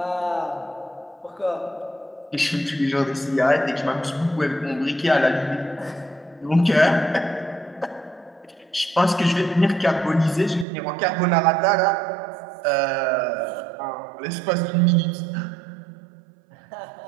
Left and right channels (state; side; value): drops out; left; at 10.7 s